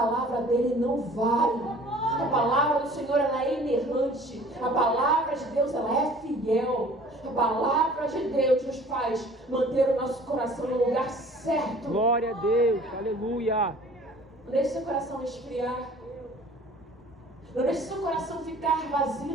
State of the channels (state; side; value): normal; both; correlation 0.49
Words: dele não vai. A palavra do Senhor, ela é inerrante. A palavra de Deus, ela é fiel. A palavra de Deus nos faz manter o nosso coração no lugar certo. Glória a Deus, aleluia. Não deixe seu coração esfriar. Não deixe seu coração ficar vazio